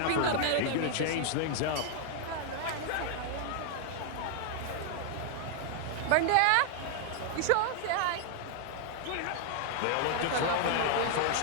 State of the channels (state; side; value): different; both; correlation 0.00